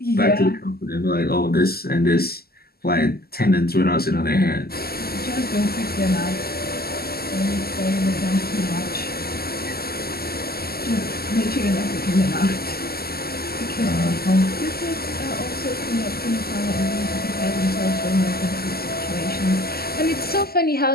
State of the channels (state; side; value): late; right; 0.45 ms